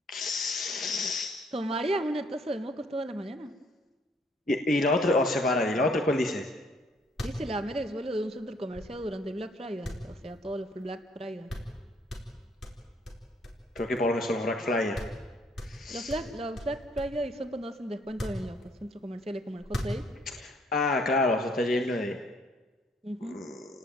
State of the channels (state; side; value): normal; both; correlation 0.64